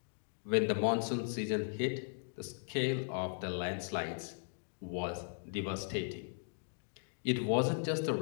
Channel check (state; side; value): silent; right; digital silence